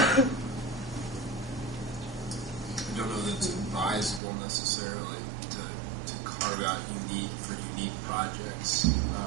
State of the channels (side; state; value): left; drops out; at 4.2 s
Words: don't know that it's advisable necessarily to carve out unique projects,